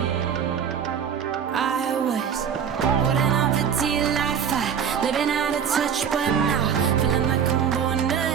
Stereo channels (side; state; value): left; quieter; 7.8 dB